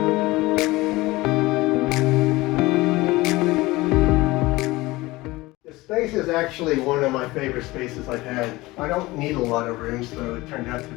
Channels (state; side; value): quieter; right; 20.3 dB